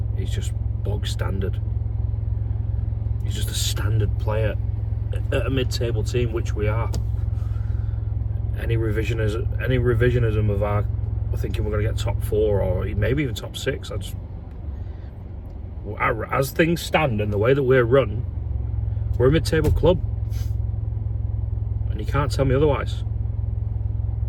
he's just bog standard. He's just a standard player at a mid-table team, which we are. Any revisionism of our thinking we're going to get top 4 or maybe even top 6, as things stand and the way that we're run, we're a mid-table club, and you can't tell me otherwise.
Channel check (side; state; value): both; identical; correlation 1.00